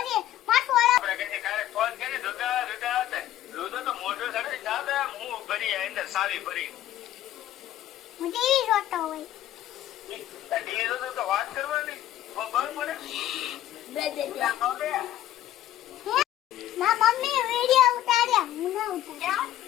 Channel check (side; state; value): right; quieter; 13.0 dB